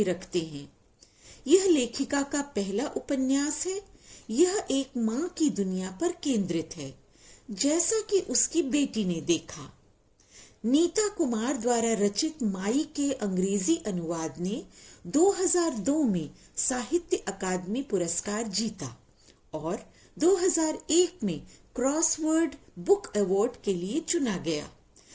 रखते हैं? यह लेखिका का पहला उपन्यास है। यह एक माँ की दुनिया पर केंद्रित है, जैसा कि उसकी बेटी ने देखा। नीता कुमार द्वारा रचित माई के अंग्रेजी अनुवाद ने 2002 में साहित्य अकादमी पुरस्कार जीता और 2001 में क्रॉसवर्ड बुक अवार्ड के लिए चुना गया।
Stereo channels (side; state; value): both; identical; correlation 1.00